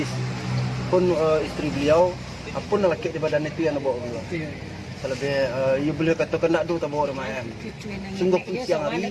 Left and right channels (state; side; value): identical; both; correlation 1.00